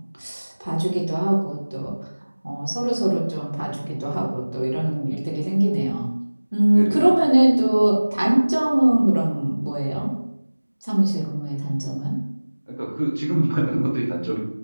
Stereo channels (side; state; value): both; inverted; correlation -1.00